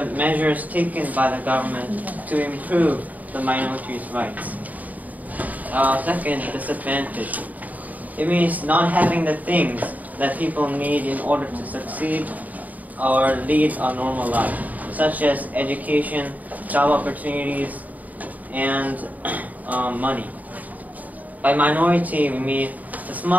measures taken by the government to improve the minorities' rights. Second, disadvantage. It means not having the things that people need in order to succeed or lead a normal life, such as education, job opportunities, and money. By minority, we mean a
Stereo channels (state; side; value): late; left; 0.076 ms